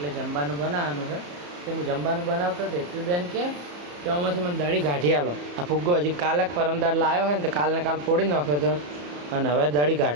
જમવાનું બનાવવાનું છે. તો હું જમવાનું બનાવતો હતો. હેતવી બેન કે આમાંથી મને દાઢી કાઢી આલો. આ ફુગ્ગો હજી કાલે પરમદાર લાવ્યો હોય ને તો કાલને કાલ ફોડી નાખ્યો હતો અને હવે દાઢી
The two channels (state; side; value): late; left; 34 ms